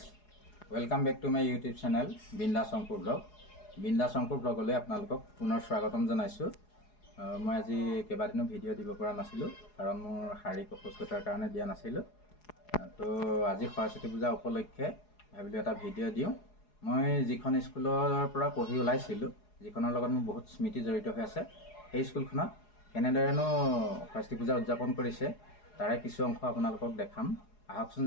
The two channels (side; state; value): right; late; 4.8 ms